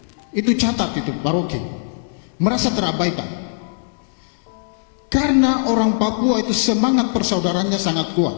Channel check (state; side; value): silent; right; digital silence